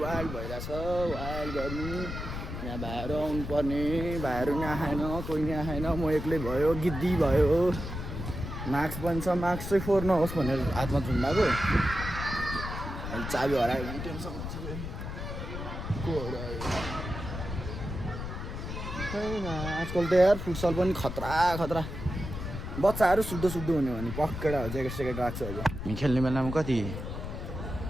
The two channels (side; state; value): left; noise; rumble, 6 dB below the sound